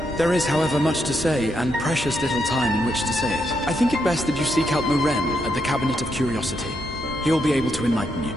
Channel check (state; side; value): normal; both; correlation 0.80